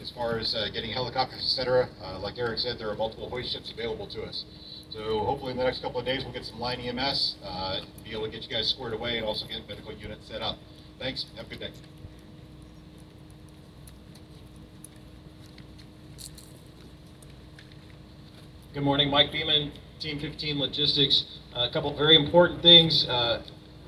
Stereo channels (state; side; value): identical; both; correlation 1.00